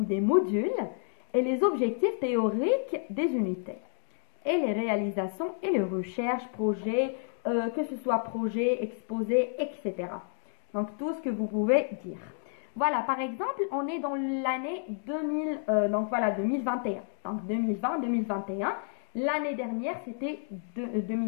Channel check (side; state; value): right; silent; digital silence